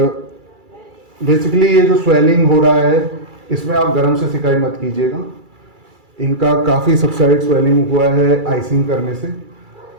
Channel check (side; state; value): left; late; 2.3 ms